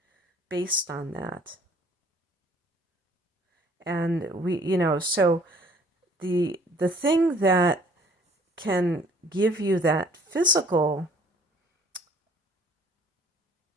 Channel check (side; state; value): both; normal; correlation 0.56